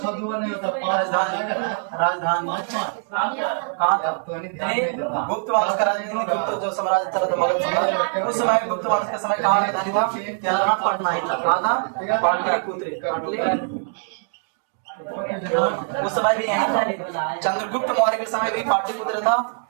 2 नहीं होता 5 राजधानी कहाँ था? गुप्त वंश का राजधानी, गुप्त जो साम्राज्य था तो मगध साम्राज्य, उस समय गुप्त वंश के समय कहाँ राजधानी था? क्या पटना ही था। कहाँ था? पाटलिपुत्र। उस समय भी यही था। चंद्रगुप्त मौर्य के समय भी पाटलिपुत्र था,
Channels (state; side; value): silent; left; digital silence